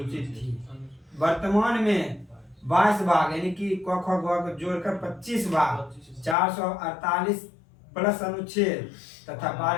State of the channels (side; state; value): right; drops out; at 6.4 s